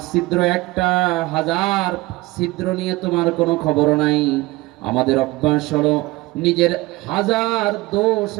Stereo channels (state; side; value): quieter; left; 20.4 dB